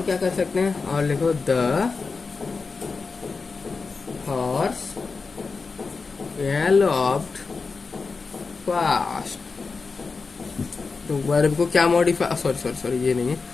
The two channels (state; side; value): quieter; right; 4.5 dB